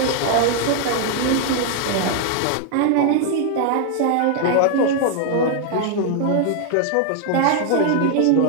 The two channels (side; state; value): both; different; correlation 0.00